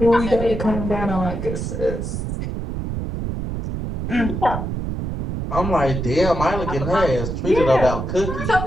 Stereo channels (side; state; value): right; noise; rumble, 4 dB below the sound